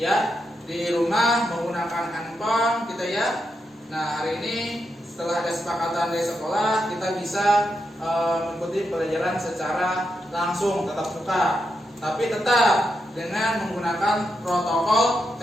di rumah menggunakan handphone kita ya. Nah, hari ini setelah ada kesepakatan dari sekolah, kita bisa mengikuti pelajaran secara langsung tatap muka, tapi tetap dengan menggunakan protokol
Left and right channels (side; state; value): both; normal; correlation 0.84